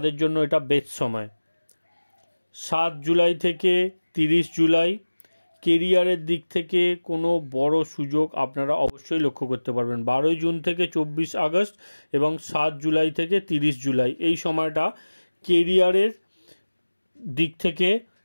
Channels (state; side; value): inverted; both; correlation -1.00